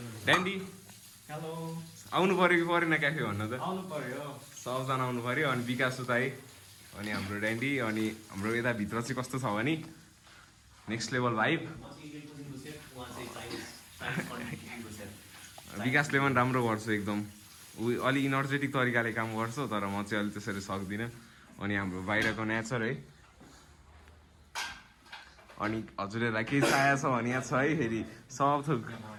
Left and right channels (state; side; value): identical; both; correlation 1.00